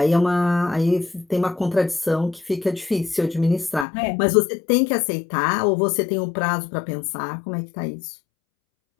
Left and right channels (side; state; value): right; drops out; at 3.9 s